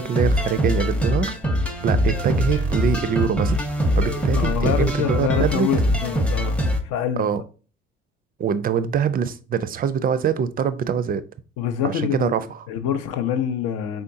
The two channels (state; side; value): normal; both; correlation 0.48